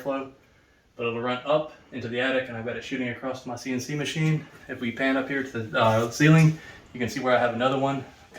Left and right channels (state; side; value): identical; both; correlation 1.00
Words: But it'll run up into the attic, and I've got it shooting across my CNC machine. If we pan up here to the ceiling, you can see where I have another one